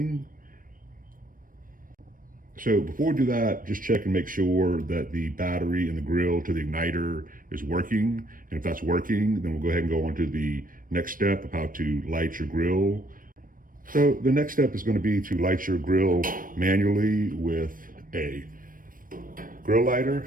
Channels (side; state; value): left; late; 0.40 ms